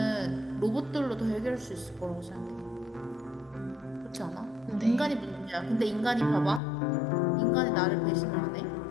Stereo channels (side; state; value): right; drops out; at 6.6 s